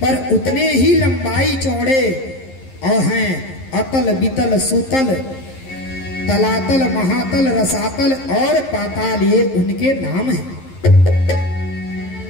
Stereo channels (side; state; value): right; late; 11 ms